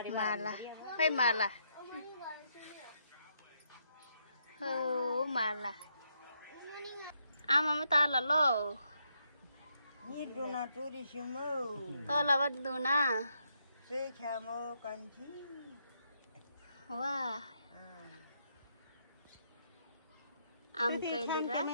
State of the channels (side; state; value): both; inverted; correlation -0.77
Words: माला खै माला हो माला आमामा तल लो तल बद्दुना वा आम